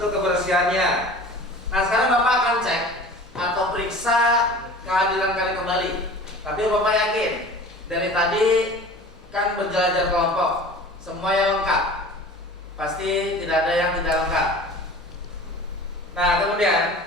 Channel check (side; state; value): both; normal; correlation 0.41